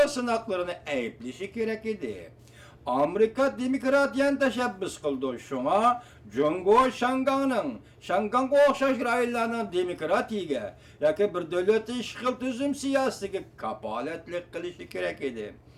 sınaklarını ayıplışı gerek idi. Amerika demokratiyan teşebbüs kıldı. Şuna Cungo Şangang'a okşaş raylarının demokratiye yaki bir devleti işgal tüzüm siyasetiga kapaletlik kılışı gerek idi.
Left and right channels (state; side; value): identical; both; correlation 1.00